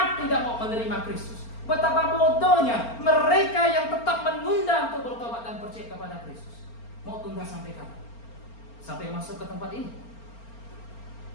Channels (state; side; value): late; right; 4.4 ms